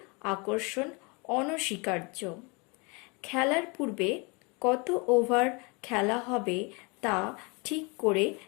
আকর্ষণ অনস্বীকার্য। খেলার পূর্বে কত ওভার খেলা হবে তা ঠিক করে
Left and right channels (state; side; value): quieter; right; 30.0 dB